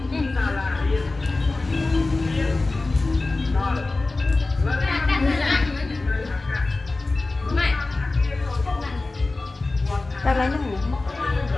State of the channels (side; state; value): right; quieter; 3.3 dB